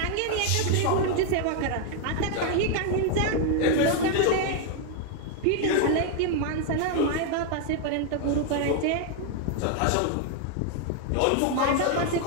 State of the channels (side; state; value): both; different; correlation 0.00